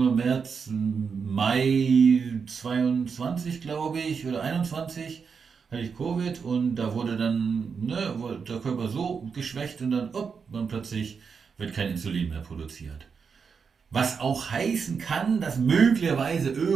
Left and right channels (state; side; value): quieter; left; 5.9 dB